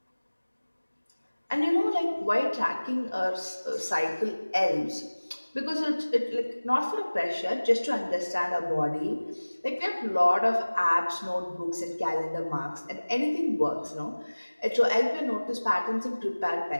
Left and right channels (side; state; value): both; inverted; correlation -1.00